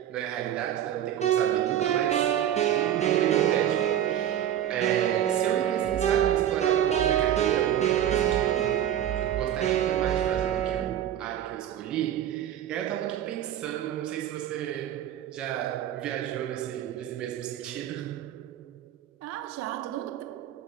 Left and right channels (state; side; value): quieter; left; 11.0 dB